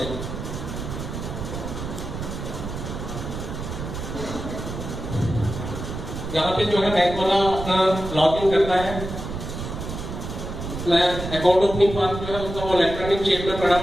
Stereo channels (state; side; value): noise; right; rumble, 7 dB below the sound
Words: यहाँ पे जो है बैंक वाला अपना लॉगिन करता है, अकाउंट ओपनिंग फॉर्म जो है उसका वो इलेक्ट्रॉनिक शेप में पड़ा